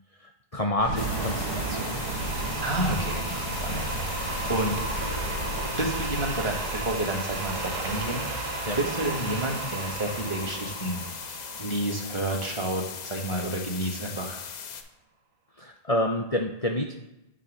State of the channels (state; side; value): late; right; 2.0 ms